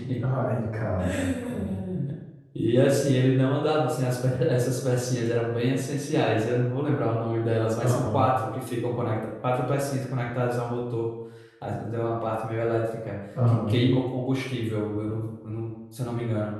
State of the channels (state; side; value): identical; both; correlation 1.00